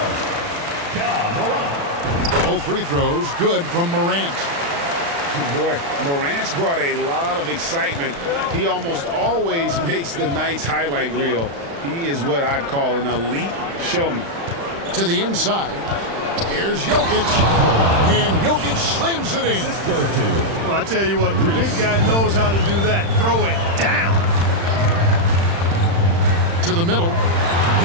Both free throws good from Morant. Boy, Morant's brought a lot of excitement. He almost always makes the night's highlight reel. He is what I'd call an elite showman. To the inside. Here's Jokic. And Jokic slams it in. Well, I tell you what, the big guy knows how to do that. Throw it down. To the middle.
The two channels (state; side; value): late; left; 35 ms